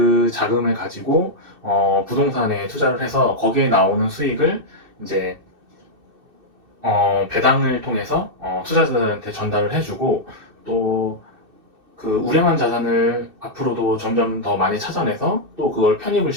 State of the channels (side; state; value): left; late; 2.6 ms